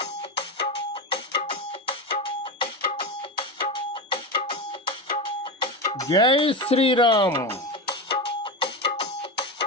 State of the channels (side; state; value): both; normal; correlation 0.19